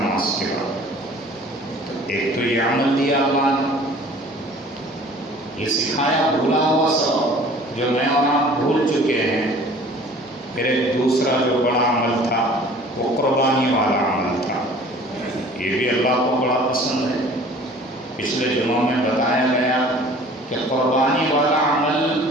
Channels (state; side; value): normal; both; correlation 0.48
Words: کے بعد۔ ایک تو یہ عمل دیا اللہ نے، یہ سکھایا بھولا ہوا سبق جو میں اور آپ بھول چکے ہیں۔ پھر ایک دوسرا جو بڑا عمل تھا وہ قربانی والا عمل تھا، یہ بھی اللہ کو بڑا پسند ہے۔ پچھلے دنوں میں بتایا گیا کہ قربانی والا